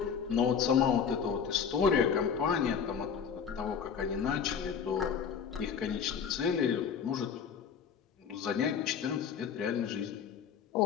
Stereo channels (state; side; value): quieter; right; 7.0 dB